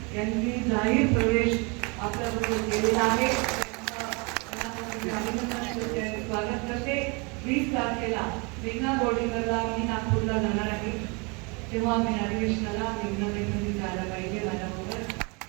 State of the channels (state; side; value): quieter; left; 30.6 dB